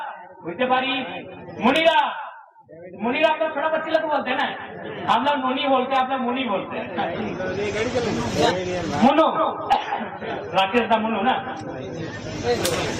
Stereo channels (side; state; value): both; identical; correlation 1.00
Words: বুঝতে পারি। मुनीरा मुनीरा आप लोग छोटा बच्चे लोग बोलते हैं ना, हम लोग मुनी बोलते हैं, आप लोग मुनी बोलते हैं। मुनु राकेश का मुनु ना।